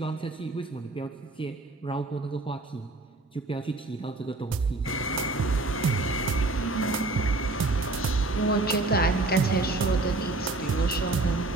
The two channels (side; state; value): left; quieter; 3.0 dB